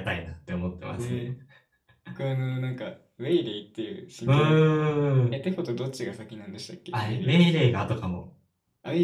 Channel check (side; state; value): both; identical; correlation 1.00